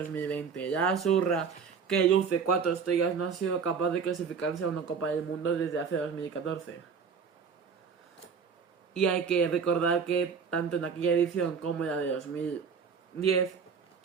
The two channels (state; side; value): quieter; left; 6.0 dB